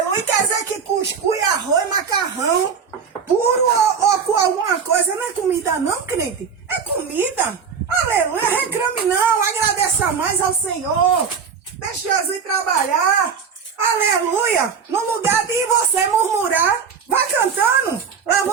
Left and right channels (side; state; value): left; quieter; 6.3 dB